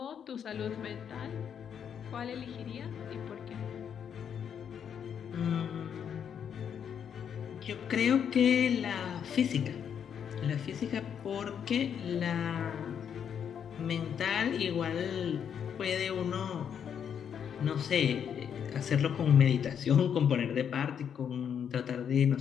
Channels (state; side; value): quieter; right; 8.1 dB